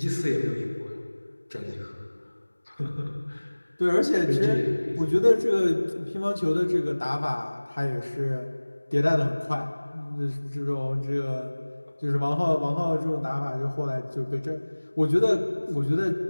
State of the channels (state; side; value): inverted; both; correlation -1.00